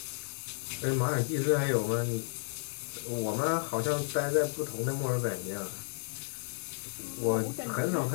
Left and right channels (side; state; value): right; silent; digital silence